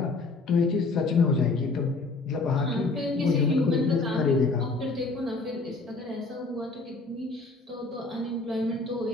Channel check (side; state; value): right; quieter; 3.6 dB